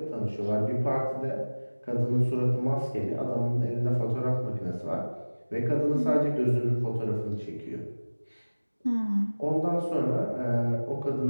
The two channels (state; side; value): inverted; both; correlation -1.00